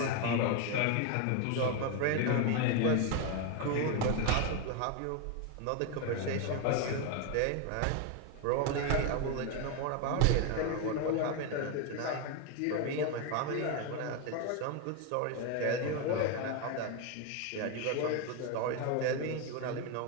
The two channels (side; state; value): both; different; correlation 0.02